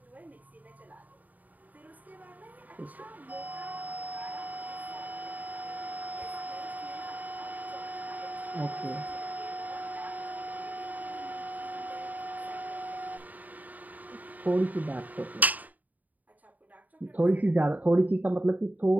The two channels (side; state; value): left; late; 0.078 ms